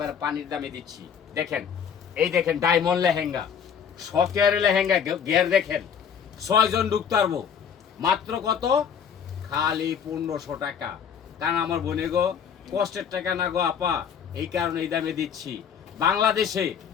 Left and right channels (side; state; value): right; quieter; 7.5 dB